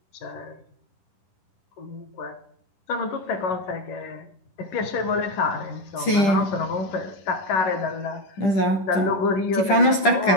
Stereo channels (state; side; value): late; right; 10 ms